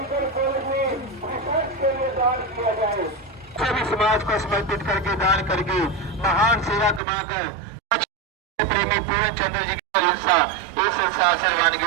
कॉलेज में रिसर्च के लिए दान किया जाए। सभी समाज को समर्पित करके दान करके महान सेवा कमाकर प्रेमी पूरन चंद्र जी की इस संसार से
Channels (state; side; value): drops out; left; at 7.0 s